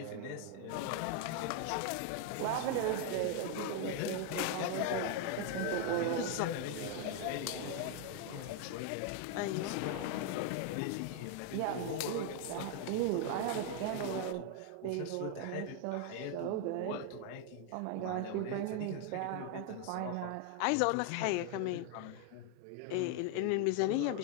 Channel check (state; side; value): different; both; correlation 0.00